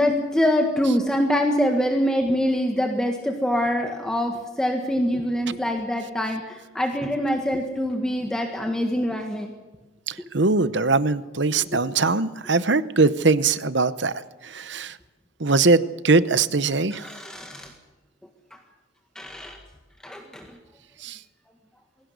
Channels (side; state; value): both; normal; correlation 0.43